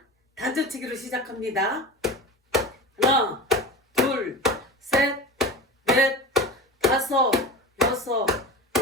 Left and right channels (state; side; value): normal; both; correlation 0.30